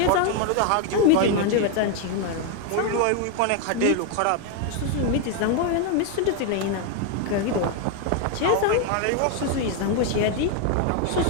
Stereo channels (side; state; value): both; different; correlation 0.01